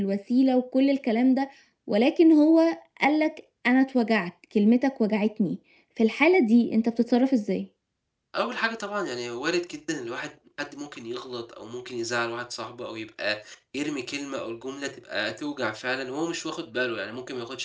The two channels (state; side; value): identical; both; correlation 1.00